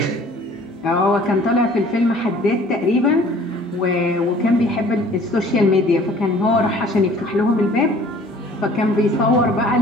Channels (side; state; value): both; normal; correlation 0.52